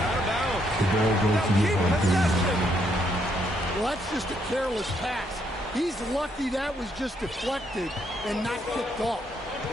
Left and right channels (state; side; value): normal; both; correlation 0.74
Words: of bounds. The ball goes to Keep possession. Well, that's just a careless pass. He's lucky that was just deflected and not kicked off.